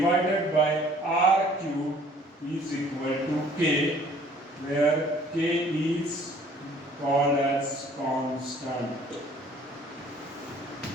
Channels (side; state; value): both; normal; correlation 0.55